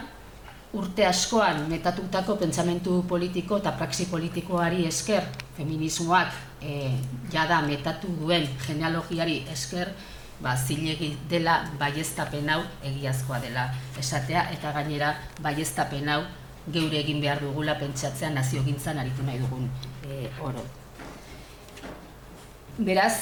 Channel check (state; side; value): identical; both; correlation 1.00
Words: urte askoan metatutako pentsamentu politiko eta praxi politikoari esker, feminismoak jada metatu duen genealogiari esker, zilegi dela baieztapen hau egiazkoa dela esatea, eta gainera baieztapen hau geure egin behar dugula pentsatzea naziogintzan aritu nahi dugun oro.